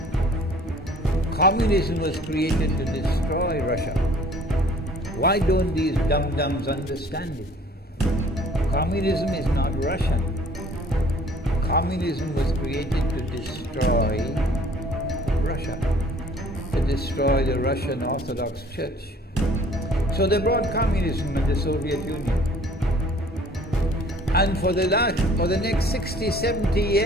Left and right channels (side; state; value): both; normal; correlation 0.53